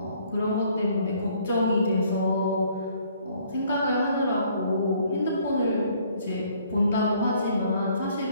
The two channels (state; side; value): inverted; both; correlation -0.62